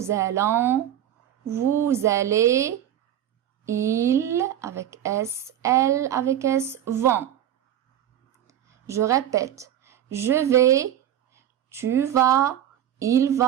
allons, vous allez. Il, avec S, elle, avec S, vont. Je répète. Je vais, tu vas, il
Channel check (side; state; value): left; quieter; 11.1 dB